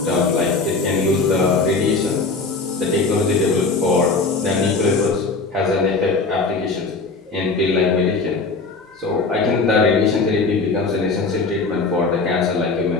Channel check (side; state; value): right; quieter; 3.9 dB